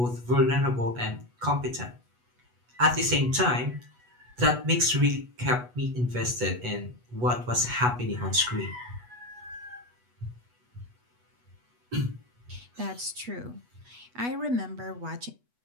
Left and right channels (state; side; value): late; left; 8.2 ms